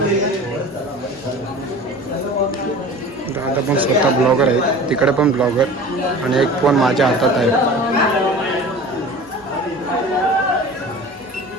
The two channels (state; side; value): noise; left; hum, 27 dB below the sound